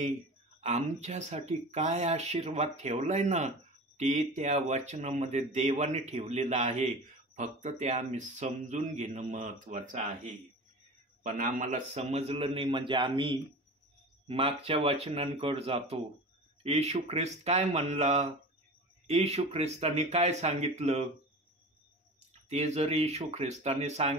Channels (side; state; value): both; normal; correlation 0.34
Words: आमच्यासाठी काय आशीर्वाद ठेवलाय ना, ते त्या वचनामध्ये देवाने ठेवलेलं आहे. फक्त ते आम्ही समजून घेणं महत्त्वाचं आहे. पण आम्हाला समजलं नाही म्हणजे आम्ही मागच्या वचनांकडे जातो. येशू ख्रिस्त काय म्हणला, येशू ख्रिस्ताने काय सांगितलं, ते जर येशू ख्रिस्ताने